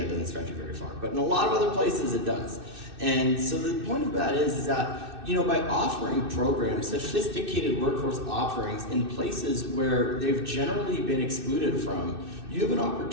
doesn't stretch you very far. But in a lot of other places, it does. And so the point of that is that by offering programs, sophisticated workforce offerings in places where they've generally been excluded from, you have an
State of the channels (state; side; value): late; left; 2.6 ms